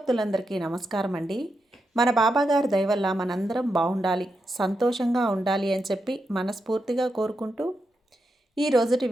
నమస్కారం అండి. మన బాబాగారి దయ వల్ల మనందరం బాగుండాలి, సంతోషంగా ఉండాలి అని చెప్పి మనస్ఫూర్తిగా కోరుకుంటూ ఈ రోజుటి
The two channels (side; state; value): both; normal; correlation 0.86